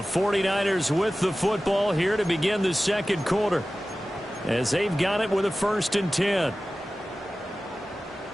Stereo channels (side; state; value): both; normal; correlation 0.96